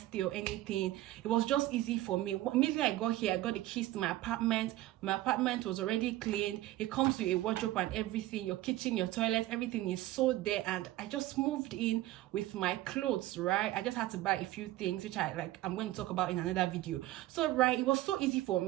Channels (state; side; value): quieter; left; 16.0 dB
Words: or anything. It was just easy for me. Immediately I got here, I got the keys to my apartment. My apartment was already cleaned. It comes with a wardrobe and everything. Your kitchen, your toilet, everything is so there. And I just moved in with my clothes, right? I just had to buy a few things, which I'm going to talk about in another video. So, right, it was so easy for